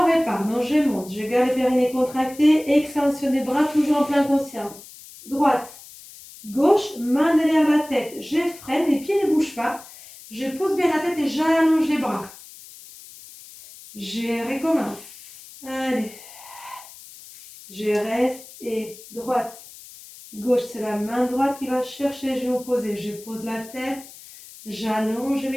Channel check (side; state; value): left; noise; hiss, 18 dB below the sound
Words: repart. Donc je monte. Je garde les périnées contractés. Extension des bras, toujours en pleine conscience. Droite, gauche, main derrière la tête. Je freine, les pieds ne bougent pas. Je pose bien la tête et j'allonge les bras. Je recommence. Allez. Je reste et droite, gauche, c'est la main droite qui va chercher les genoux posés. Je pose la tête, j'allonge, je